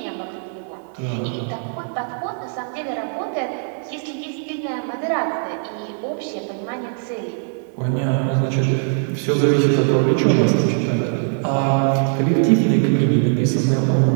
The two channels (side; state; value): left; silent; 60 dB below the other